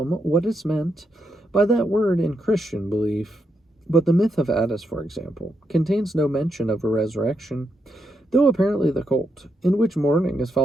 what is meant by that word in Christian belief. But the myth of Attis, for example, contains no mention of a resurrection, though apparently the cult, in which mourning is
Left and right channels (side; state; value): both; normal; correlation 0.82